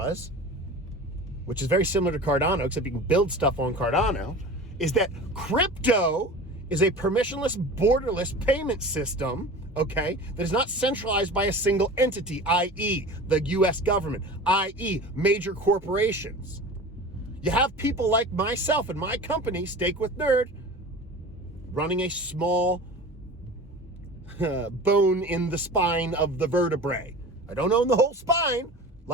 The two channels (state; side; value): normal; both; correlation 0.36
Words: which is very similar to Cardano, except you can build stuff on Cardano, is that crypto is a permissionless, borderless payment system, okay, that is not centralized by a single entity, i.e. the US government, i.e. major corporations. You have people like myself and my company, Steak with Nerd, running a small bone in the spine of the vertebrae. I don't own the whole spine,